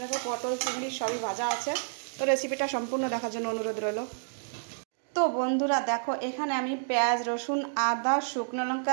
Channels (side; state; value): left; silent; digital silence